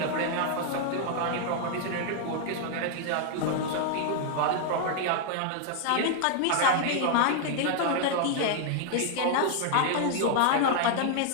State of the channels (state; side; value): different; both; correlation 0.00